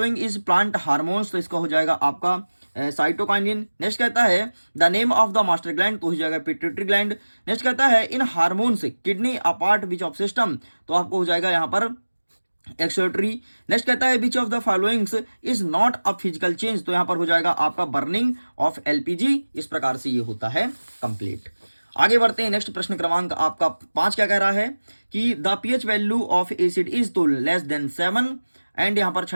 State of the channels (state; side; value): inverted; both; correlation -1.00